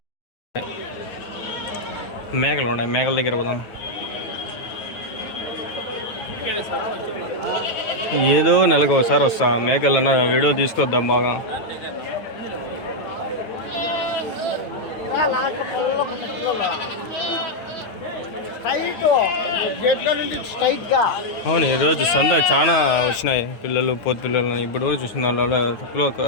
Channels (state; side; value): late; right; 9.3 ms